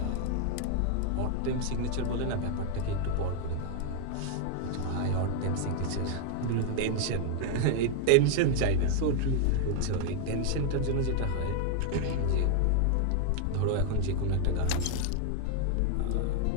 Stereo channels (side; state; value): both; different; correlation 0.00